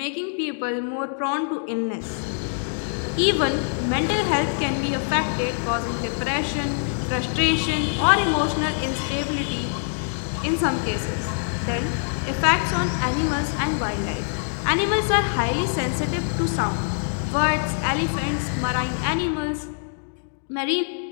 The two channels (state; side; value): silent; right; digital silence